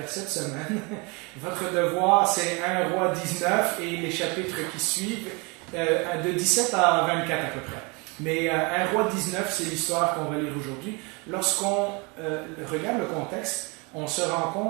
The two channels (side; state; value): left; quieter; 29.3 dB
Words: cette semaine. Votre devoir, c'est 1 Roi 19 et les chapitres qui suivent, de 17 à 24 à peu près. Mais 1 Roi 19, c'est l'histoire qu'on va lire aujourd'hui. Lorsqu'on regarde le contexte, on se rend